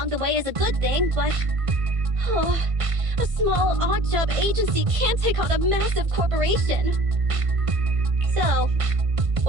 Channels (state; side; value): late; left; 1.5 ms